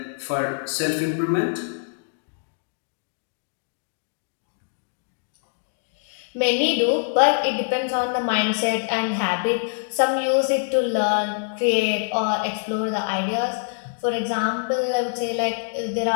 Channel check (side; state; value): right; silent; 62 dB below the other